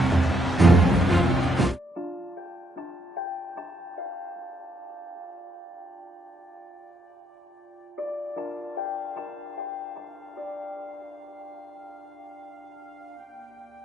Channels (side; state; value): both; normal; correlation 0.74